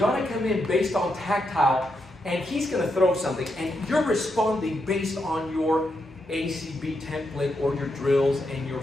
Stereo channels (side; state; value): both; normal; correlation 0.82